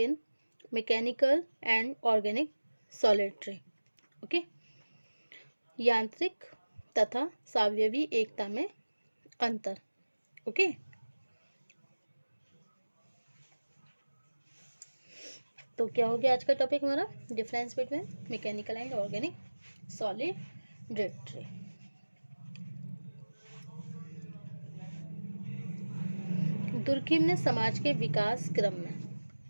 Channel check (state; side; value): inverted; both; correlation -1.00